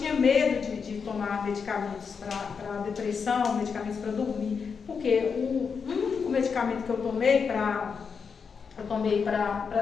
medo de tomar medicamentos para depressão, medicamentos para dormir, porque o único medicamento que eu tomei para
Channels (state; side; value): quieter; right; 5.9 dB